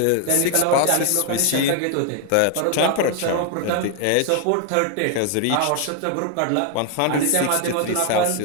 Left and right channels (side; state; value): both; different; correlation 0.00